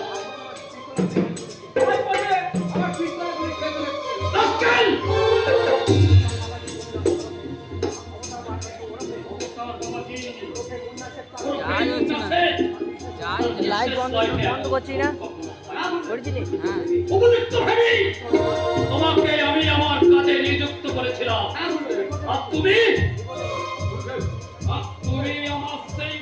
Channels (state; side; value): identical; both; correlation 1.00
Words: লাইট বন্ধ করছি না, তোমাকে আমি আমার কাজে নিযুক্ত করেছিলাম, আর তুমি আমার সেই